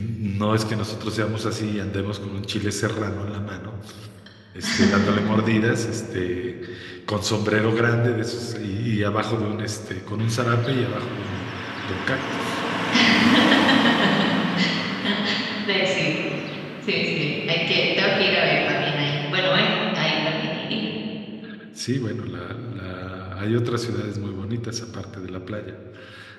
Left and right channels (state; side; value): identical; both; correlation 1.00